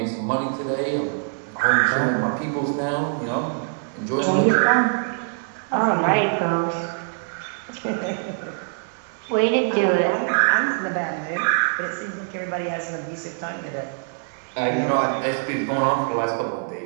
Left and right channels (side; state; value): left; silent; 63 dB below the other